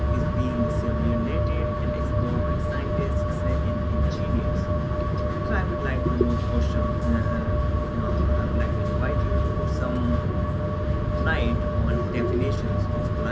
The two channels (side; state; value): both; identical; correlation 1.00